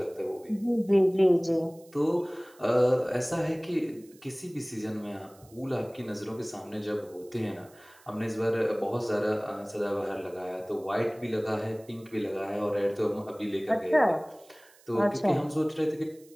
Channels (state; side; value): noise; right; hiss, 27 dB below the sound